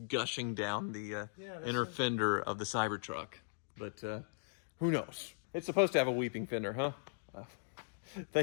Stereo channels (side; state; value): right; silent; digital silence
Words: gushing down the inner fender of the Cybertruck. But who knows? It's supposed to have a weeping fender, huh?